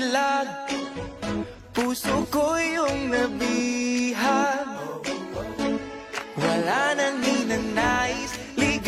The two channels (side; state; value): both; identical; correlation 1.00